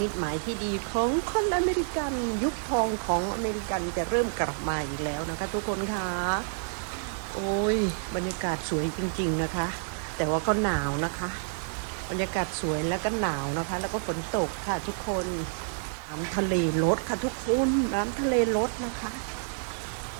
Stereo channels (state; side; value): silent; left; digital silence